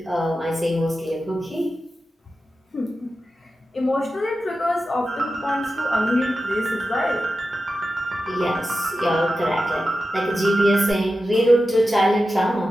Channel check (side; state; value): both; normal; correlation 0.92